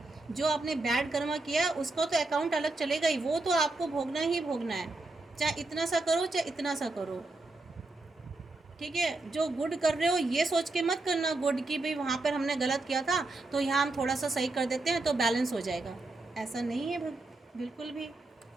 जो आपने बैड कर्मा किया उसका तो अकाउंट अलग चलेगा ही, वो तो आपको भोगना ही भोगना है, चाहे इतना सा करो चाहे इतना सा करो। ठीक है, जो गुड कर रहे हो ये सोच के मत करना गुड की भाई वहाँ पर हमने गलत किया था तो यहाँ हम थोड़ा सा सही कर देते हैं तो बैलेंस हो जाएगा। ऐसा नहीं है बिल्कुल भी।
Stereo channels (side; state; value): left; quieter; 3.0 dB